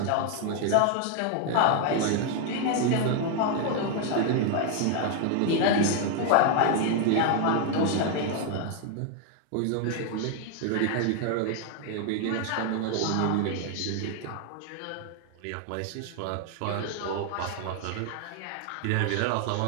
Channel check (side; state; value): both; different; correlation 0.00